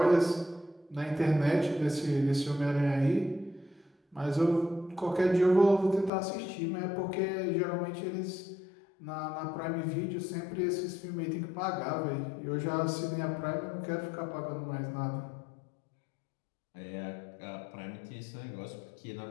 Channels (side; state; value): right; drops out; at 6.1 s